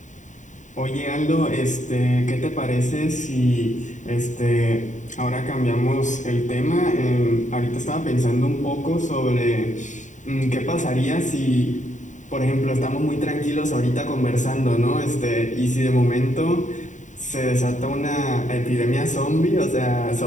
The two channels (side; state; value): right; late; 0.36 ms